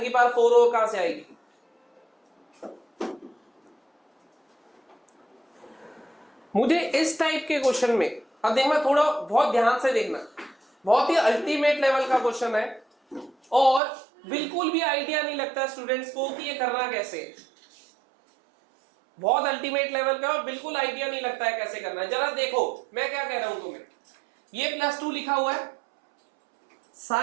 की पावर 4 और कहां से आएगी? मुझे इस टाइप के क्वेश्चन में, अब देखना, थोड़ा बहुत ध्यान से देखना, बहुत ही अल्टीमेट लेवल का क्वेश्चन है और बिल्कुल भी आइडिया नहीं लगता स्टूडेंट्स को कि ये करना कैसे है। बहुत अल्टीमेट लेवल का और बिल्कुल आइडिया नहीं लगता है कैसे करना है। जरा देखो मैं क्या कह रहा हूं तुम्हें, ये +2 लिखा हुआ है,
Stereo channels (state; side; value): drops out; left; at 13.8 s